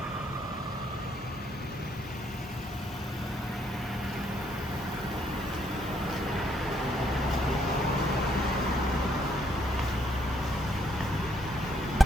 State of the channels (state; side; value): normal; both; correlation 0.71